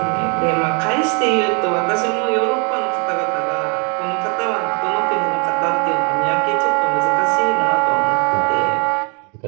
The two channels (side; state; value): left; quieter; 35.4 dB